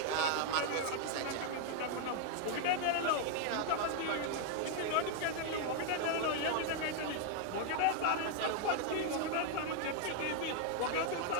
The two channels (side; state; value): both; different; correlation 0.00